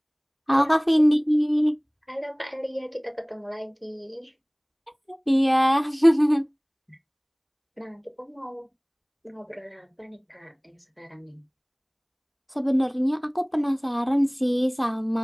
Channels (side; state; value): both; identical; correlation 1.00